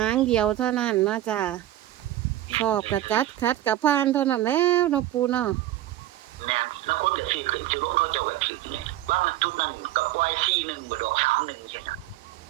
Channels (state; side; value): quieter; left; 14.1 dB